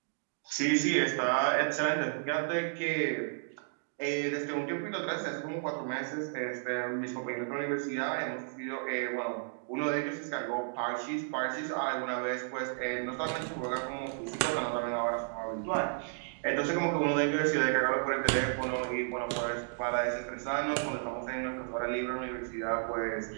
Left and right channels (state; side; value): silent; left; digital silence